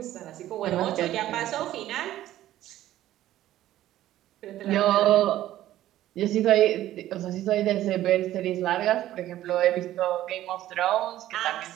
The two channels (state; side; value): quieter; left; 13.7 dB